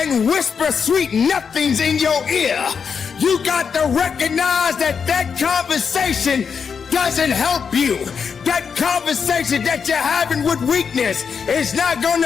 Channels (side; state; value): right; quieter; 6.3 dB